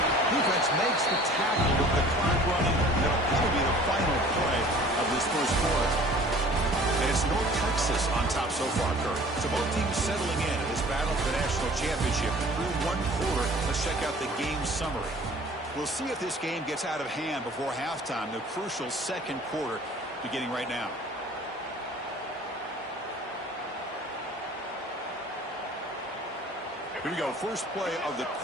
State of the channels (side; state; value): both; normal; correlation 0.49